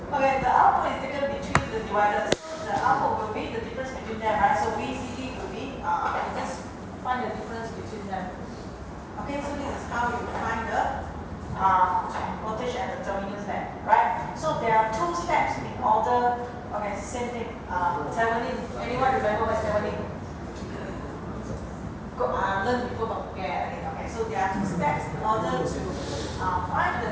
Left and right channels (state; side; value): identical; both; correlation 1.00